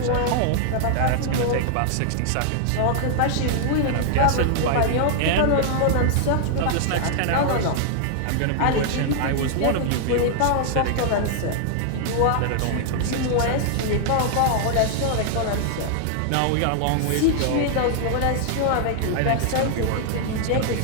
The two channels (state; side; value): different; both; correlation 0.00